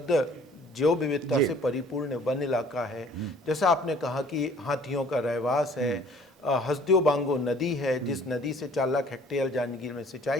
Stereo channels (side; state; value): both; normal; correlation 0.54